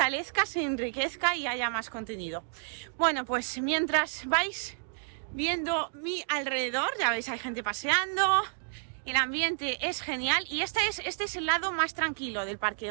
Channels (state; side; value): silent; left; digital silence